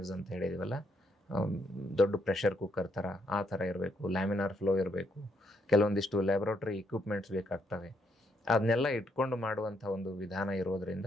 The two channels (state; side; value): normal; both; correlation 0.74